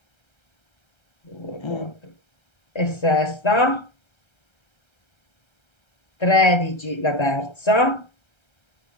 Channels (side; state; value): right; late; 1.3 ms